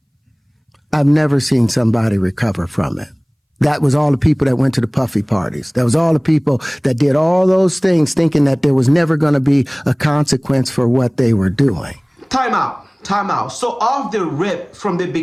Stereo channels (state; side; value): identical; both; correlation 1.00